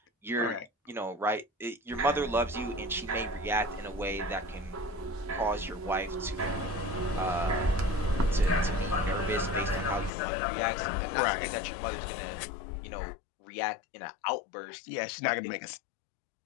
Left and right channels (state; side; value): drops out; right; at 10.1 s